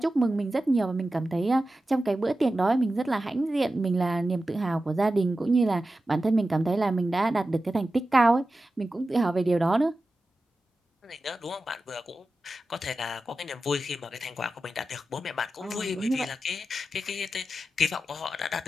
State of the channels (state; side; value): normal; both; correlation 0.93